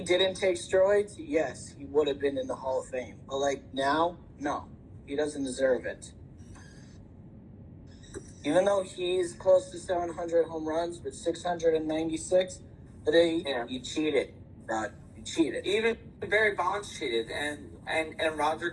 take steroids, yes, he would have been in the Hall of Fame. But like now, no, he doesn't deserve it. Even though he's close to 700 home runs with 696, but he cheated, Rod. He cheated. Even Barry Bonds cheated, and Roger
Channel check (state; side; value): identical; both; correlation 1.00